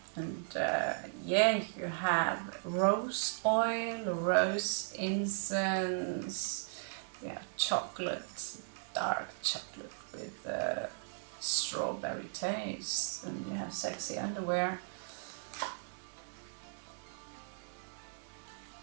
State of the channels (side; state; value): left; silent; digital silence